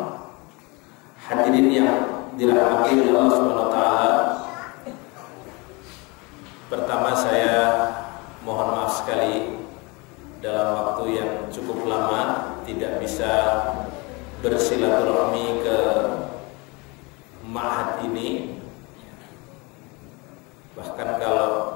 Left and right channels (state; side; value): quieter; right; 27.2 dB